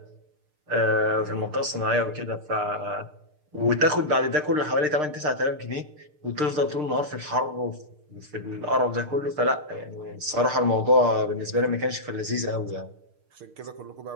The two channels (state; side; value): late; left; 6.6 ms